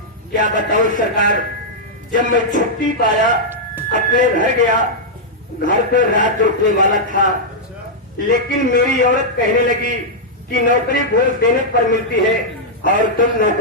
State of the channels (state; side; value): normal; both; correlation -0.06